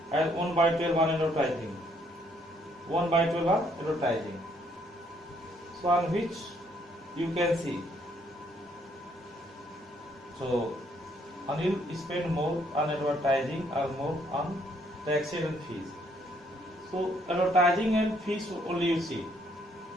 and 1 by 12 on advertising. 1 by 12 on advertising. So on which you can see. So Anil spend more on advertising or more on taxes and fees. So advertising and fees only you see.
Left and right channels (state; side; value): normal; both; correlation 0.68